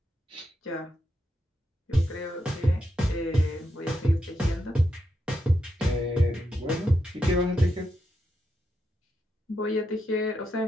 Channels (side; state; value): both; normal; correlation 0.84